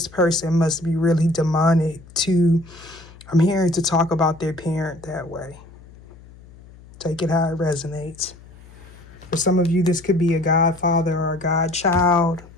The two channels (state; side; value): noise; left; hum, 22 dB below the sound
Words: person must be really demonic I'm hearing to talk about their parent that way. Take it how it resonates. For some of you, this could be a godfather or a godchild.